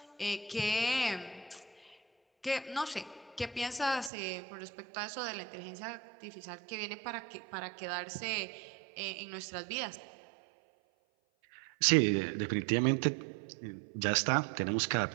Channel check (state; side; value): drops out; left; at 4.1 s